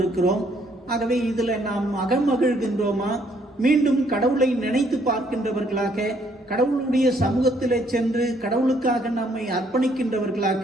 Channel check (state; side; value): normal; both; correlation 0.67